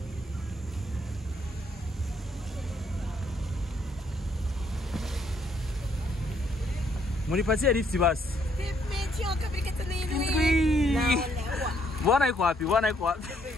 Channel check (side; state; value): both; normal; correlation 0.70